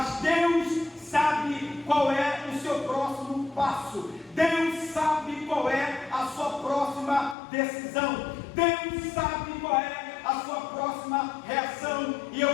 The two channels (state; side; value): drops out; right; at 7.4 s